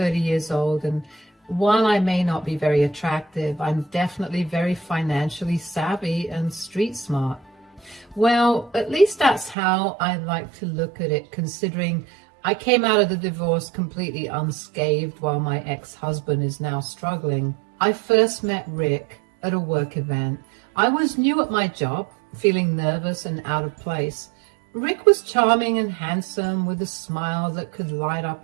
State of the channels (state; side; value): drops out; left; at 9.6 s